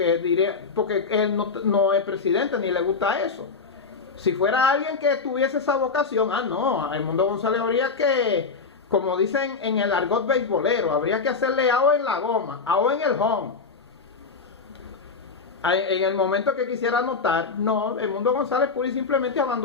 él no es presidente ni le gusta eso, si fuera alguien que tuviese esa vocación, no, a Edmundo González habría que, como dicen en el argot beisbolero, habría que hacerle AO en la goma, AO en el home. En el momento que quisiera anotar, no, Edmundo González pura y simplemente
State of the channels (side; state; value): right; quieter; 4.8 dB